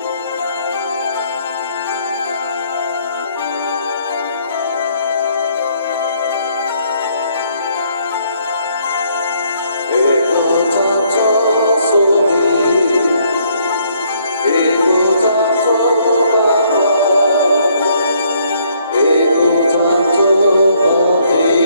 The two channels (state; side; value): inverted; both; correlation -0.67